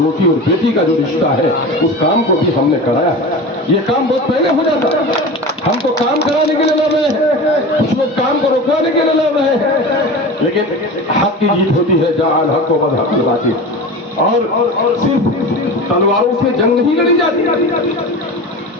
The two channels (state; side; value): normal; both; correlation 0.31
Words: और बेटी का जो रिश्ता है उस काम को भी हमने कराया है। ये काम बहुत पहले हो जाता, हम तो काम कराने के लिए लड़ रहे हैं, कुछ लोग काम को रोकवाने के लिए लड़ रहे हैं, लेकिन हक की जीत होती है, जहां हक को बद हक की बात। और सिर्फ तलवारों से जंग नहीं लड़ी जाती,